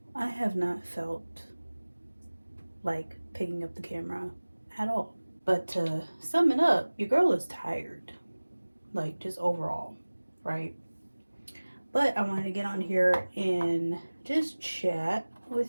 I have not felt like picking up the camera at all. But to sum it up, your girl is tired, like just overall, right? But I wanted to get on here and just chat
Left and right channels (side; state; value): both; inverted; correlation -1.00